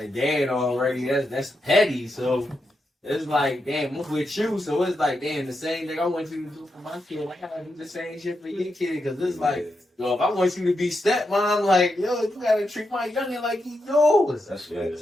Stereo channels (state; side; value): normal; both; correlation 0.85